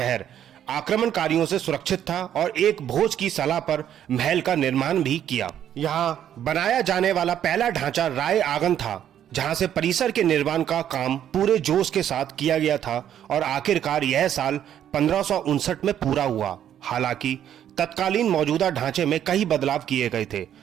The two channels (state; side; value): quieter; left; 10.2 dB